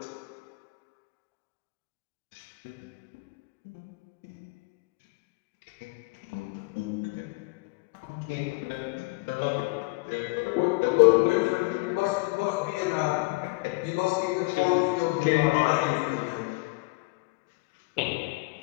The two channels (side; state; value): right; quieter; 25.6 dB